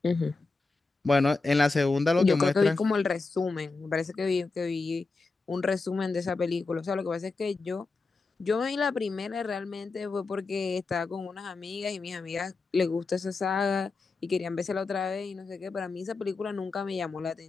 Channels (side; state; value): right; quieter; 3.8 dB